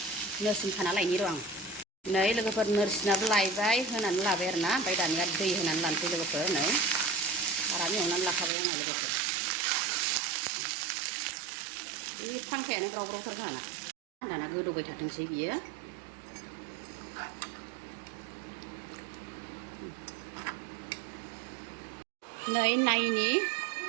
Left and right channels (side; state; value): left; drops out; at 8.5 s